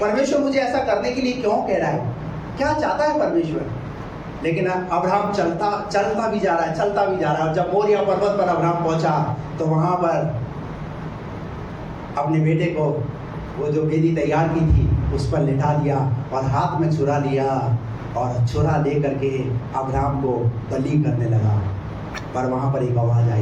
मुझे ऐसा करने के लिए क्यों कह रहा है, क्या चाहता है परमेश्वर। लेकिन अब्राहम चलता भी जा रहा है। जब मोरिया पर्वत पर अब्राहम पहुंचा तो वहां पर अपने बेटे को, वो जो वेदी तैयार की थी, उस पर लिटा दिया और हाथ में छुरा लिया, और छुरा ले करके अब्राहम को बलि करने लगा। पर वहां पर एक आवाज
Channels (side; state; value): both; identical; correlation 1.00